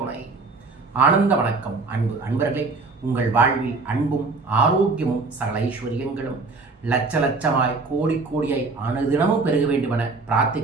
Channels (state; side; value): quieter; left; 3.8 dB